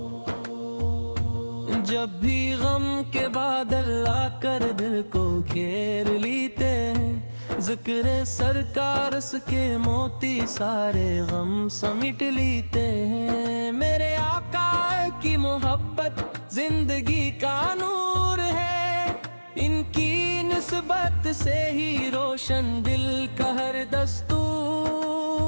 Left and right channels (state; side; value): inverted; both; correlation -1.00